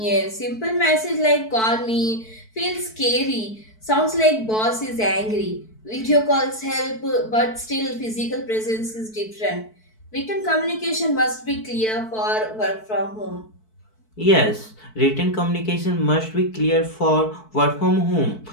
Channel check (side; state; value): right; late; 4.6 ms